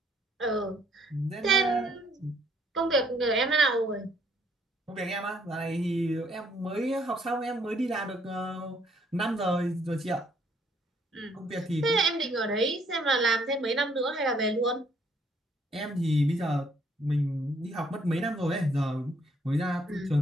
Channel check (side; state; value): both; normal; correlation 0.66